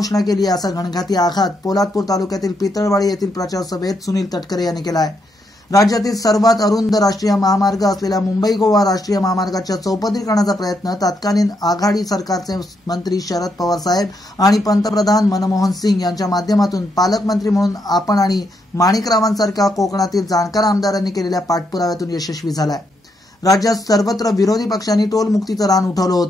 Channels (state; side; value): normal; both; correlation 0.78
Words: केली असा घणघाती आघात पोलादपूर तालुक्यातील पितळवाडी येथील प्रचार सभेत सुनील तटकरे यांनी केला आहे। राज्यातील सर्वात अरुंद राष्ट्रीय महामार्ग असलेल्या मुंबई गोवा राष्ट्रीय महामार्गाच्या चौपदरीकरणाचा प्रयत्न तत्कालीन आघाडी सरकारचे मंत्री शरद पवार साहेब आणि पंतप्रधान मनमोहन सिंग यांच्या माध्यमातून पालकमंत्री म्हणून आपण आणि माणिकरावांसारख्या कोकणातील जाणकार आमदारांनी केलेल्या पाठपुराव्यातून यशस्वी झाला आहे। राज्यात सर्वत्र विरोधी पक्षांनी टोल मुक्तीचं रान उठवलं